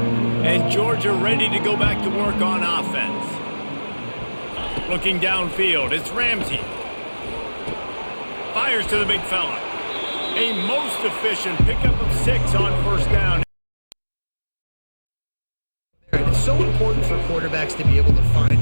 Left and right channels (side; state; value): both; inverted; correlation -1.00